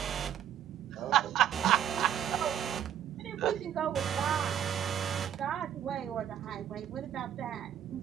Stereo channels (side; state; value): left; quieter; 9.9 dB